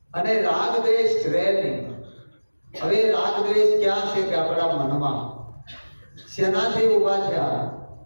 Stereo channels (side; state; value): both; inverted; correlation -1.00